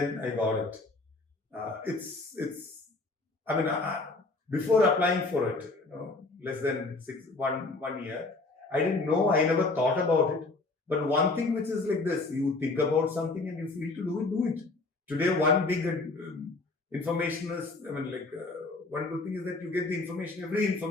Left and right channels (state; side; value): quieter; right; 3.4 dB